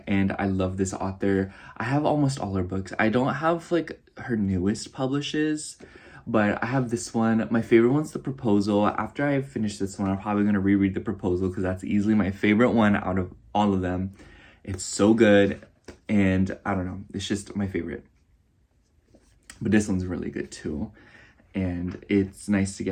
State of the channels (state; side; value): identical; both; correlation 1.00